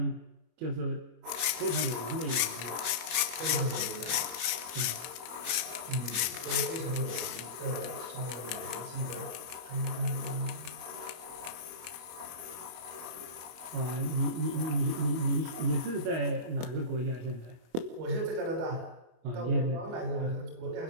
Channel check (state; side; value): late; left; 24 ms